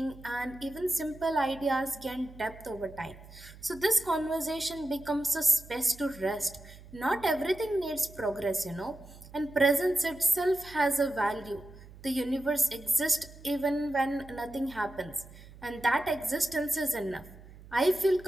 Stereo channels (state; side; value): noise; right; hum, 19 dB below the sound